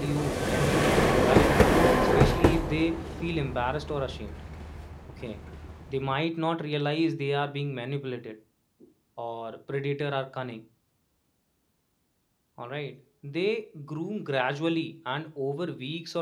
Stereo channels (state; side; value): identical; both; correlation 1.00